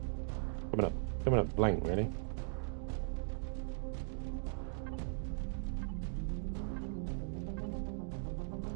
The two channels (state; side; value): silent; left; digital silence